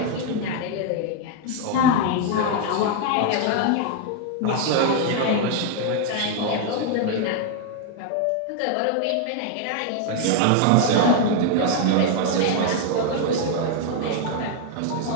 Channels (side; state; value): both; different; correlation 0.00